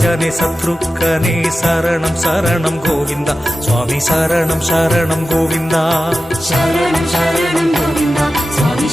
ശത്രുഘ്നെ ശരണം ശരണം ഗോവിന്ദ സ്വാമി ശരണം ശരണം ഗോവിന്ദ ശരണം ശരണം ഗോവിന്ദ സ്വാമി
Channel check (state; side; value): normal; both; correlation 0.93